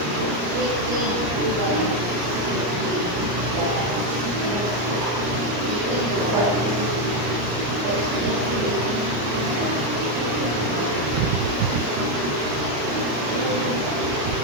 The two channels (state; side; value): late; left; 34 ms